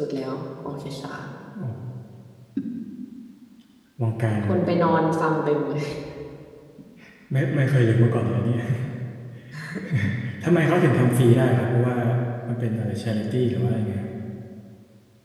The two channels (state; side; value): identical; both; correlation 1.00